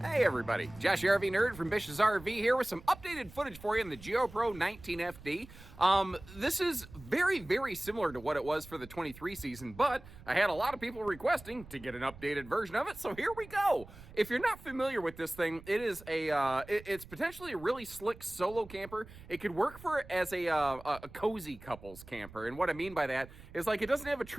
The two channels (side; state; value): right; noise; rumble, 18 dB below the sound